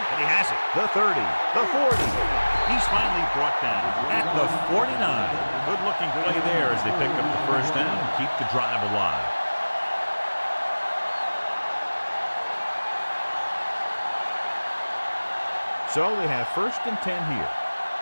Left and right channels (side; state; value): both; inverted; correlation -1.00